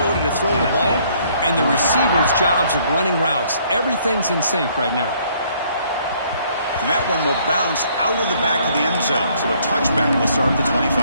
to throw the ball and the receiver's jobs of running routes. Everything's in sync right now. And that one will bounce out of the back of the end zone. So a touchback will start at the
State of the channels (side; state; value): both; inverted; correlation -0.64